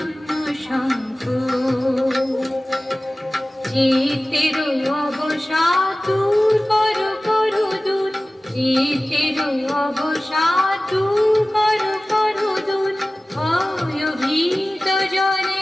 শঙ্খ চিতের অবসাদ দূর কর কর দূর চিতের অবসাদ দূর কর কর দূর ভয় ভীত জনে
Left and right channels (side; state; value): both; normal; correlation 0.97